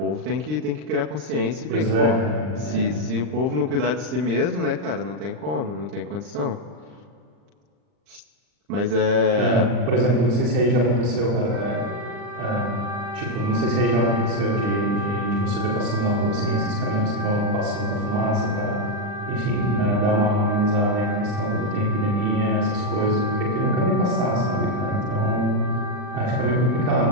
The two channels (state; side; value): late; left; 39 ms